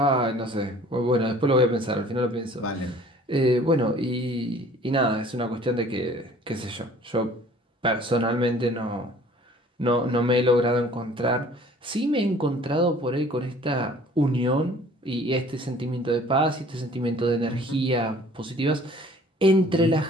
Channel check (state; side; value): normal; both; correlation 0.51